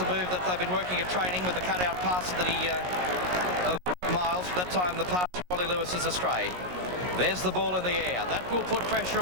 a move that they've been working at training with the cut-out pass of Miles. That time the pass to Wally Lewis is astray. There's the ball in the air. That will put pressure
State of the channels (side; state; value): left; late; 17 ms